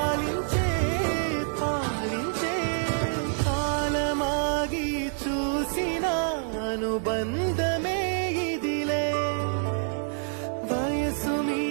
పాలించే. కాలమాగి చూసిన అనుబంధమే ఇదిలే, వయసు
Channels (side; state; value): left; silent; digital silence